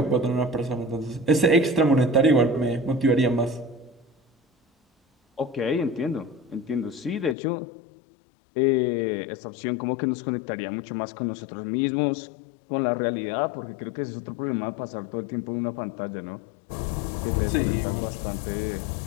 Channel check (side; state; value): right; drops out; at 7.4 s